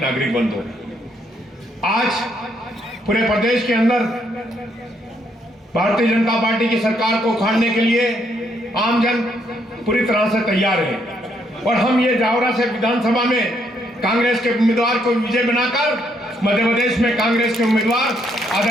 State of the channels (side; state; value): both; normal; correlation 0.73